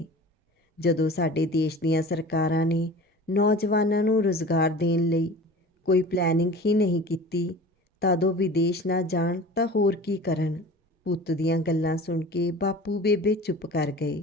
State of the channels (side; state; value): both; normal; correlation 0.39